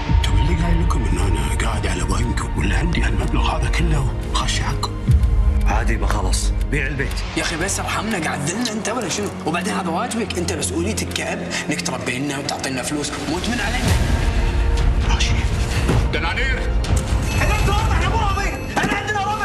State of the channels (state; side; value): identical; both; correlation 1.00